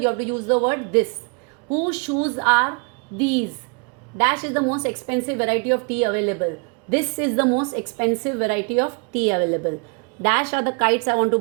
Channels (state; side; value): quieter; left; 33.9 dB